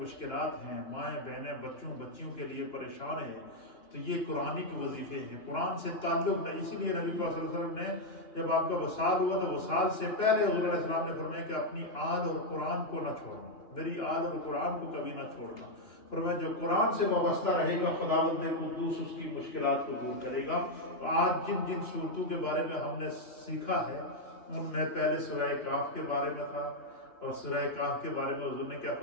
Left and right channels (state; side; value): late; right; 2.9 ms